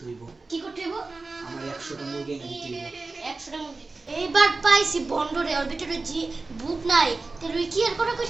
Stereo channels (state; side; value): quieter; left; 3.6 dB